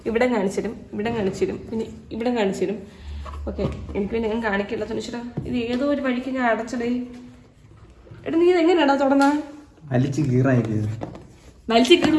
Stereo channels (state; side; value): identical; both; correlation 1.00